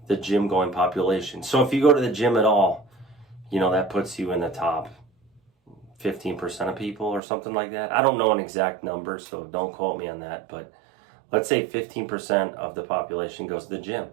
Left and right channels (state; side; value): drops out; left; at 7.2 s